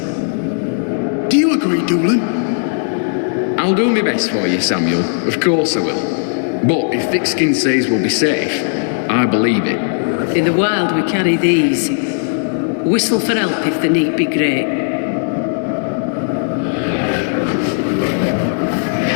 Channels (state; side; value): silent; right; digital silence